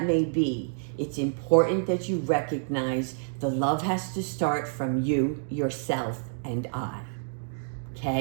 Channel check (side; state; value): left; silent; digital silence